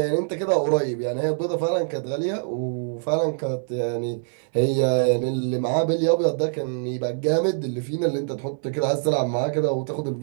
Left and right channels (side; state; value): left; silent; digital silence